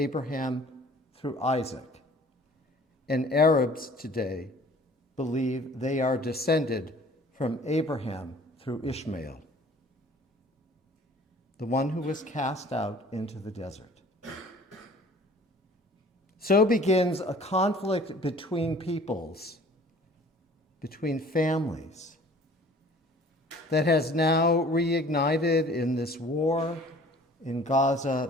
through Isaac. and Arabs today believe they are descended from Abraham through Ishmael, the one who was cast out into the desert. So begins a conflict between peoples, between families, that has now reignited in this war in Gaza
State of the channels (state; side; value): normal; both; correlation 0.50